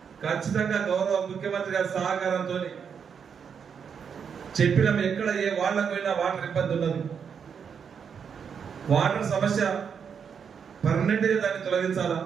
ఖచ్చితంగా గౌరవ ముఖ్యమంత్రి గారి సహకారంతో చెప్పినాం. ఎక్కడ ఏ వాళ్ళకైనా వాటర్ ఇబ్బంది ఉన్నది, వాటర్ సమస్య పర్మనెంట్గా దాన్ని తొలగించాలా,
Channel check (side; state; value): left; quieter; 6.9 dB